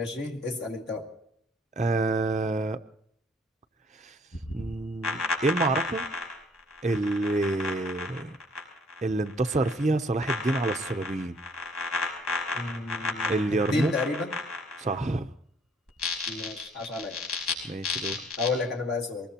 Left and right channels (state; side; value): normal; both; correlation 0.60